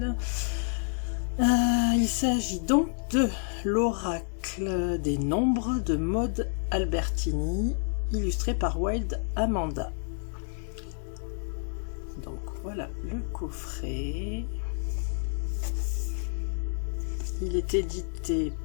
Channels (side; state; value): right; silent; 58 dB below the other